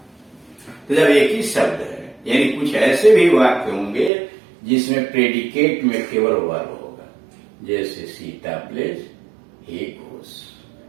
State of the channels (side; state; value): left; drops out; at 4.1 s